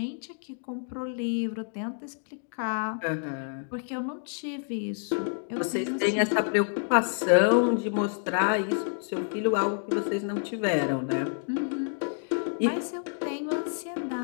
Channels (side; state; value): right; silent; 59 dB below the other